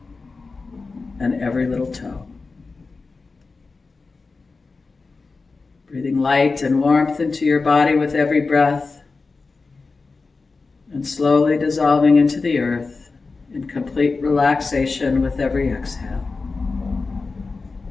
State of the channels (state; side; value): quieter; right; 4.1 dB